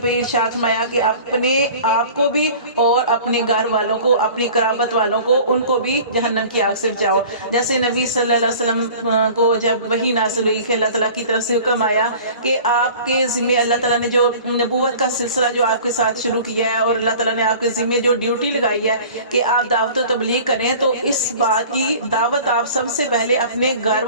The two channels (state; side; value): inverted; both; correlation -0.44